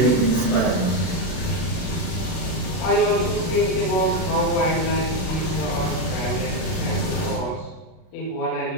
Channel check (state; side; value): late; right; 33 ms